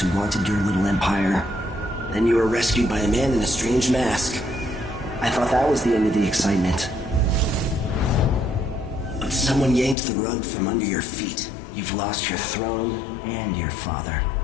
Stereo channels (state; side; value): drops out; right; at 10.0 s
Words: wanted your little empire. Then you were rescued by a man in a strange mask. I thought that was the end of the excitement. But someone yanked the rug from under your feet. You've lost your throne and your father.